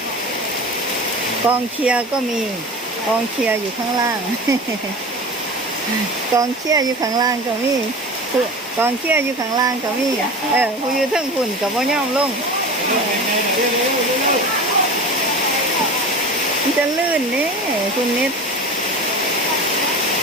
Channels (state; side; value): normal; both; correlation 0.32